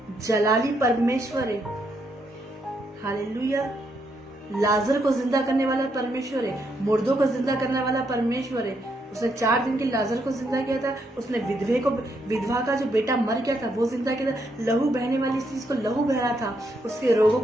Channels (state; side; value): normal; both; correlation 0.77